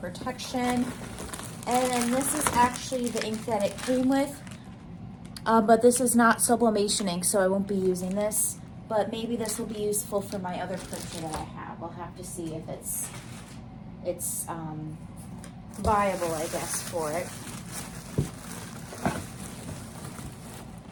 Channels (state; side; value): identical; both; correlation 1.00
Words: And this is actually the ink that it came with, but this is not sublimation ink, so I won't be using this. But maybe this will be useful for my other printer that I have. We'll have to see if it's viable, I guess, for it.